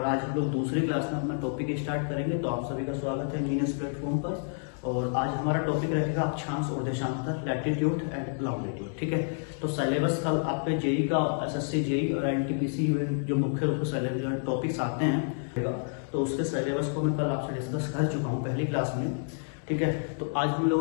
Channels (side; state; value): right; silent; digital silence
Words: आज हम लोग दूसरी क्लास में अपना टॉपिक स्टार्ट करेंगे। तो आप सभी का स्वागत है इंजीनियर्स प्लेटफॉर्म पर। और आज हमारा टॉपिक रहेगा अक्षांश और देशांतर, लैटिट्यूड एंड लॉन्गिट्यूड। ठीक है, तो सिलेबस का आपके जेई का, एसएससी जेई और एनटीपीसी जो मुख्य रूप से टॉपिक्स आते हैं, तो उसके सिलेबस को मैं कल आपसे डिस्कस कर चुका हूँ पहली क्लास में। ठीक है, तो आज हम